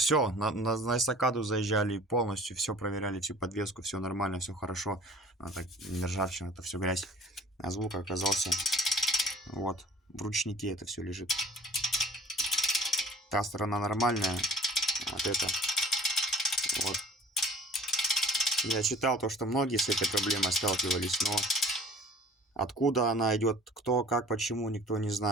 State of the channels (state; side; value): normal; both; correlation 0.48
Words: на эстакаду заезжали полностью, все проверяли, всю подвеску, все нормально, все хорошо. Так, не ржавчина, это все грязь. А звук оказался вот, в ручнике это все лежит. Та сторона нормальная, вот это. Вот. Я читал то, что многие с этой проблемой сталкивались, но откуда она идет, кто, как, почему, никто не